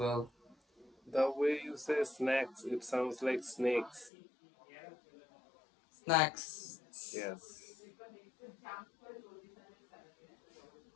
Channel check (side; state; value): right; drops out; at 4.1 s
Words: The way you say snacks, it sounds like snakes. Snacks. Yes.